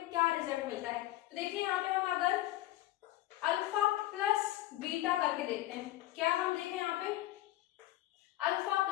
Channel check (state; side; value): quieter; right; 15.8 dB